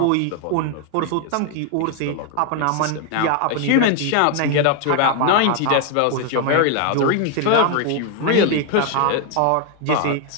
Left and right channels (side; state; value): both; different; correlation 0.01